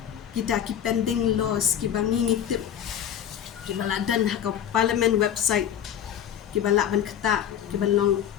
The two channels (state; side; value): quieter; right; 9.7 dB